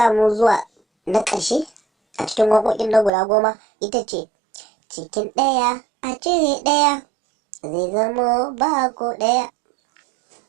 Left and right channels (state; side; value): drops out; left; at 3.1 s